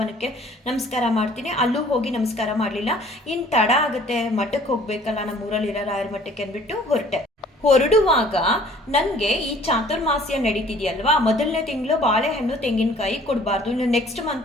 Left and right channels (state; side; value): normal; both; correlation 0.54